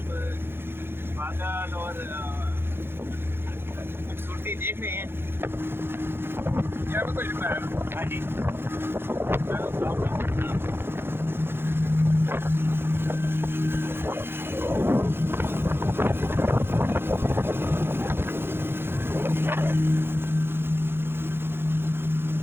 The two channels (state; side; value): late; left; 0.11 ms